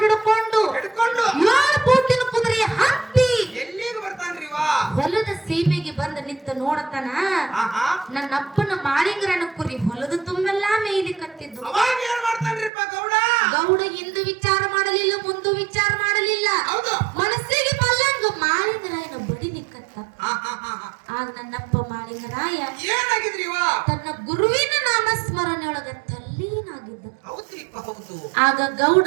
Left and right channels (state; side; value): drops out; left; at 12.7 s